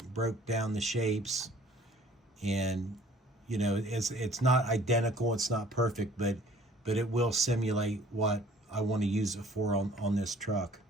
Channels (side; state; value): both; normal; correlation 0.54